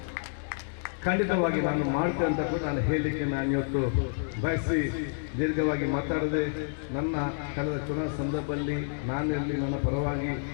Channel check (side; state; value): right; silent; digital silence